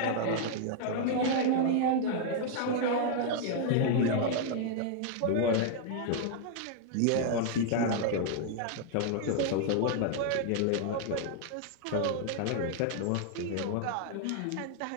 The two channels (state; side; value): different; both; correlation 0.00